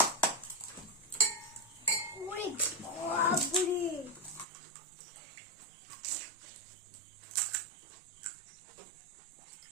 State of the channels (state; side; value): drops out; left; at 4.5 s